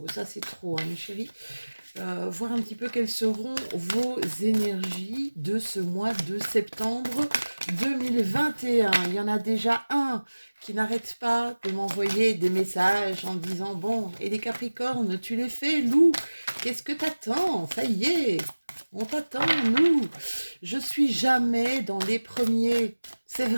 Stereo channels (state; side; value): inverted; both; correlation -1.00